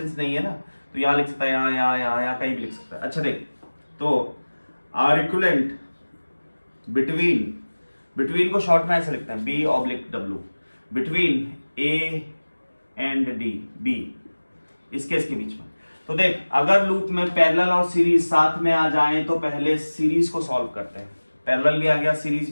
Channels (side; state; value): both; inverted; correlation -1.00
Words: नहीं है ना, तो यहाँ लिख सकता है, यहाँ कहीं भी लिख सकता है। अच्छा देख, तो आर इक्विवेलेंट बिटवीन को शॉर्ट में ऐसे लिखते हैं, B oblique W, between A and D, B इसके बीच में। तो देख अगर लूप में पैरेलल और सीरीज साथ में आ जाए तो पहले सीरीज को सॉल्व करते हैं। पैरेलल भी आ गया, सीरीज